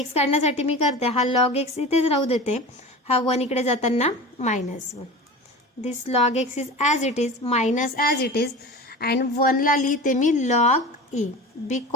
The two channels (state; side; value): normal; both; correlation 0.33